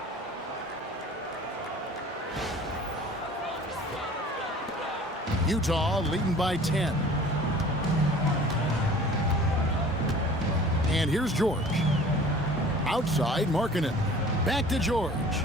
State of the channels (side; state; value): both; normal; correlation 0.46